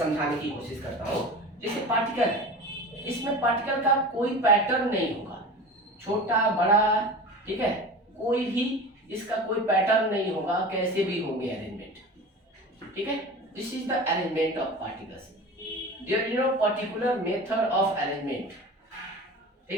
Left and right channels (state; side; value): normal; both; correlation 0.34